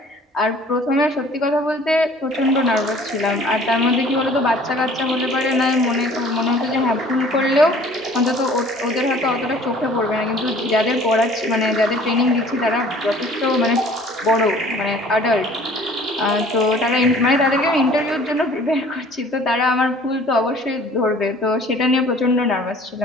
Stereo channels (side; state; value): both; normal; correlation 0.51